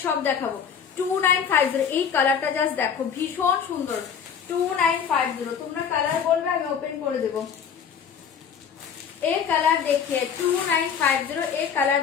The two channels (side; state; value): right; quieter; 7.3 dB